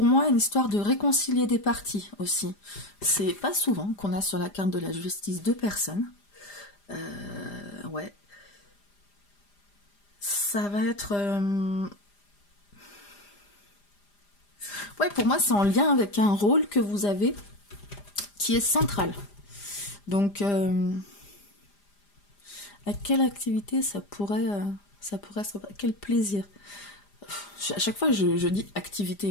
moi, une histoire de réconcilier des parties aussi. C'est pas souvent qu'on a sur la carte de la justice 2 personnes. Ouais. Ça va être... ouais, pour moi, c'est en lien avec un rôle que vous avez qui est central. Donc, à quelle activité ça pourrait se... Quel plaisir. À chaque fois, je dis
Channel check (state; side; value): late; right; 5.0 ms